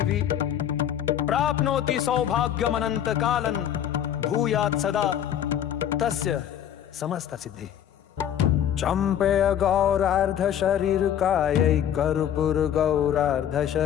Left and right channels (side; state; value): right; quieter; 10.0 dB